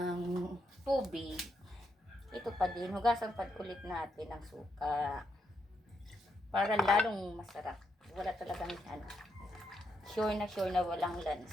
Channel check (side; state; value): both; normal; correlation 0.80